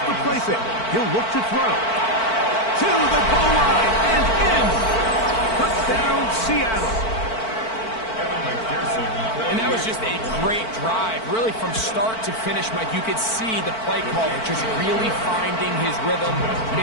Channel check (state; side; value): late; right; 4.5 ms